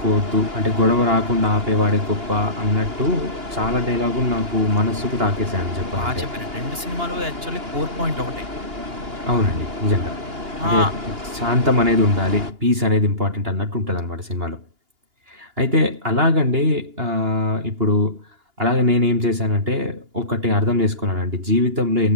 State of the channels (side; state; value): left; late; 2.8 ms